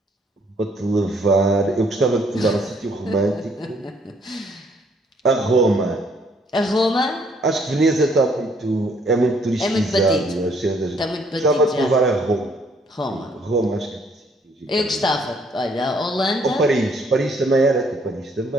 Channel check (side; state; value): both; normal; correlation 0.66